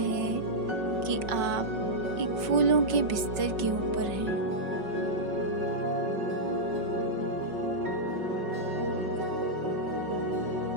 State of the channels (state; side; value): late; left; 5.4 ms